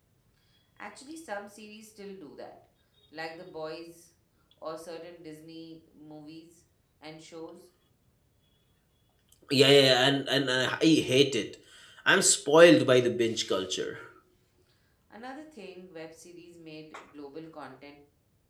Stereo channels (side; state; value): both; identical; correlation 1.00